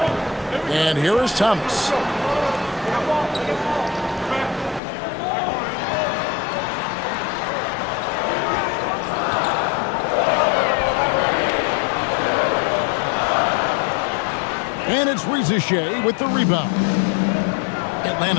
And here is Thomas. And it's Rizachet with the rebound.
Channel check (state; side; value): drops out; right; at 4.8 s